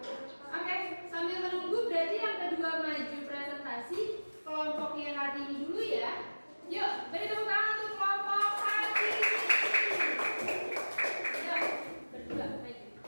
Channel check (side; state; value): both; inverted; correlation -1.00